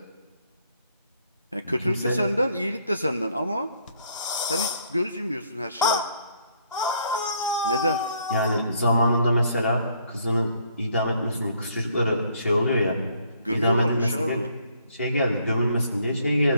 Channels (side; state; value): both; inverted; correlation -0.66